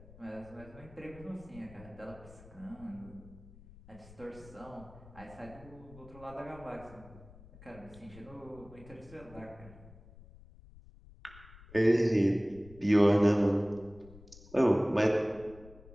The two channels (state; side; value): noise; left; rumble, 20 dB below the sound